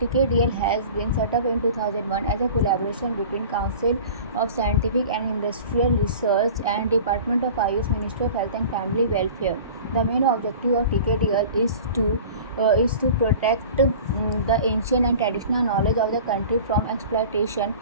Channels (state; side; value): inverted; both; correlation -0.40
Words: has been set up in 2001 as a collaboration between Council of Scientific and Industrial Research and Department of Ayush, Ministry of Health and Family Welfare. The main objective of Tkdl is to protect the ancient and traditional knowledge of the country from exploitation